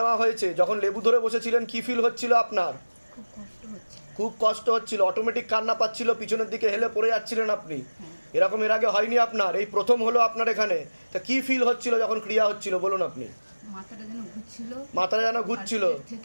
হয়েছে। যখন লেবু ধরে বসেছিলেন কি ফিল হচ্ছিল আপনার? খুব কষ্ট হচ্ছিল, অটোমেটিক কান্না পাচ্ছিল, পিছনের দিকে হেলে পড়ে যাচ্ছিলেন আপনি। এরকম এর আগে হয়নি আপনার, এই প্রথম হলো আপনার এখানে। তা কি ফিল হচ্ছিল যখন ক্রিয়া হচ্ছিল বলুন আপনি? মাথাটা যেন ঘুরছিল,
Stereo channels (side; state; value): both; inverted; correlation -1.00